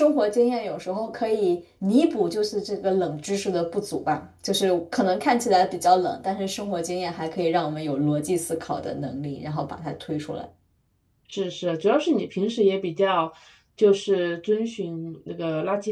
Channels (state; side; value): identical; both; correlation 1.00